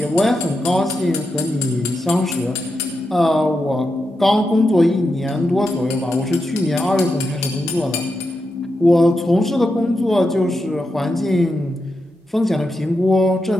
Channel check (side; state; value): both; normal; correlation 0.87